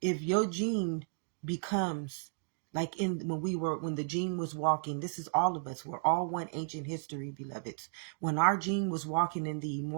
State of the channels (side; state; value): left; silent; digital silence